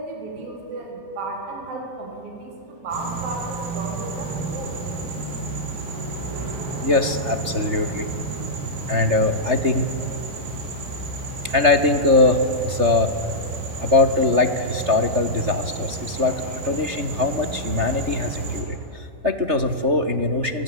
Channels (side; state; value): left; late; 3.3 ms